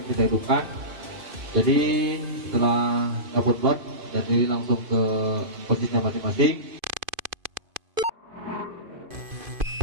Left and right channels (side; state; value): left; late; 2.5 ms